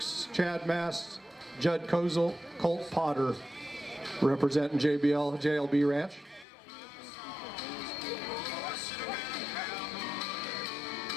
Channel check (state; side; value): drops out; right; at 6.5 s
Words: Chad Mast, Judd Kozel, Colt Potter, representing JLB Ranch.